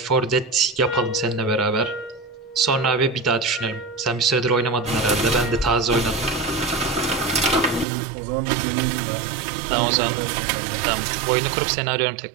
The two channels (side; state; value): left; drops out; at 7.9 s